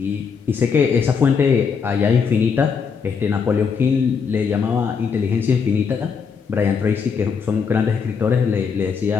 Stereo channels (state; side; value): quieter; right; 6.0 dB